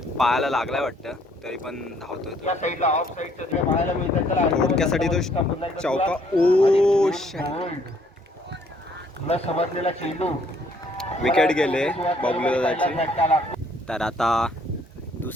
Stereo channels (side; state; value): both; normal; correlation 0.64